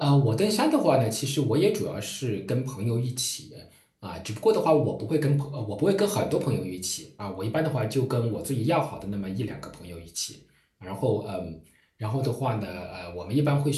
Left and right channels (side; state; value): both; identical; correlation 1.00